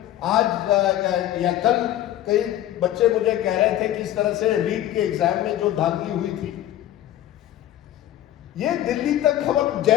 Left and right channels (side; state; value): right; quieter; 12.9 dB